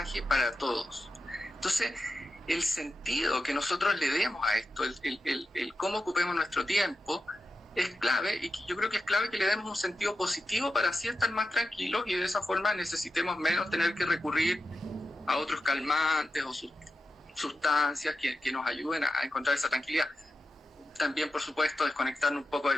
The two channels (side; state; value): both; normal; correlation 0.89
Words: para todos. Entonces, el sentido que nosotros le demos a esto, el cómo ocupemos nuestro tiempo, es clave, y yo creo que es clave que le demos un sentido positivo para así estar más tranquilos y de esa forma necesitemos menos tener que recurrir a otros calmantes o sustancias que nos ayuden a encontrar esa tranquilidad. También, por supuesto, desconectarnos un poco de